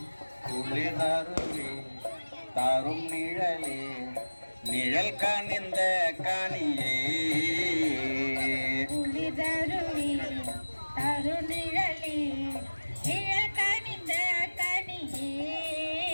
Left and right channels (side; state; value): both; inverted; correlation -1.00